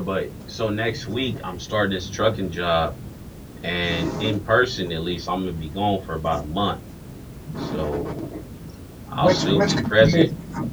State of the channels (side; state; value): both; identical; correlation 1.00